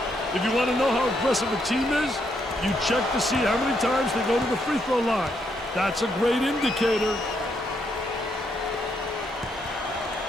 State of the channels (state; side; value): normal; both; correlation 0.76